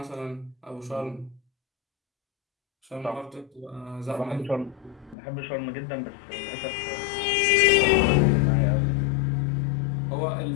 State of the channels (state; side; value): drops out; right; at 5.2 s